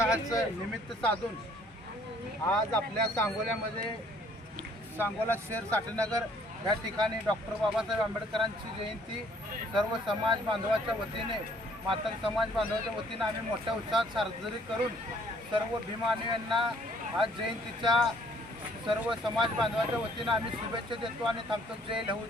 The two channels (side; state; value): both; normal; correlation 0.61